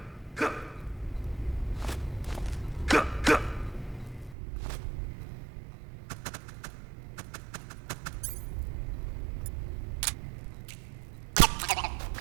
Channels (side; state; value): left; drops out; at 4.4 s